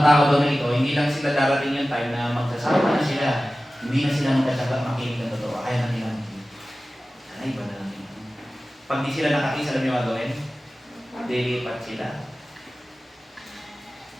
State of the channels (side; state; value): both; normal; correlation 0.96